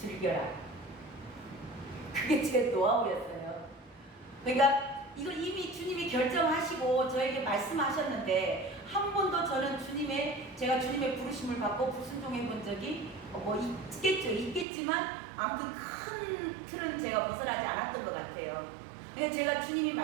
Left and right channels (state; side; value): drops out; left; at 14.7 s